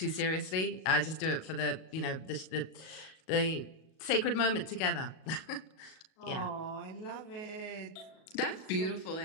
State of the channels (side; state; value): right; late; 37 ms